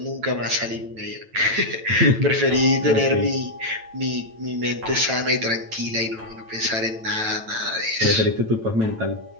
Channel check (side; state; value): left; late; 9.1 ms